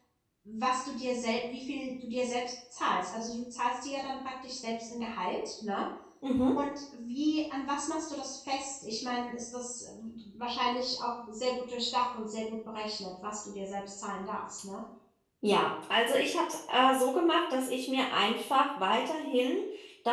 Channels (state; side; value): identical; both; correlation 1.00